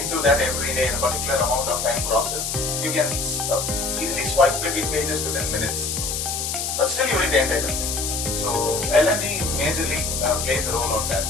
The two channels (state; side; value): noise; left; hiss, 2 dB below the sound